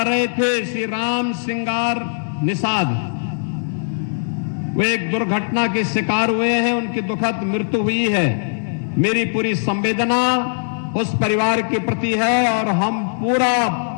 रहे थे, श्री राम सिंगार निषाद, वो एक दुर्घटना के शिकार हुए हैं, उनकी दुखद मृत्यु हुई है। मेरी पूरी संवेदना उस परिवार के प्रति है और हम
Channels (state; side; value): silent; right; 60 dB below the other